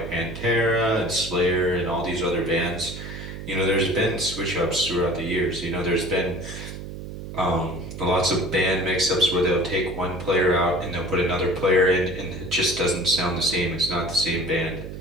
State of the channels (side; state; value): right; noise; hum, 10 dB below the sound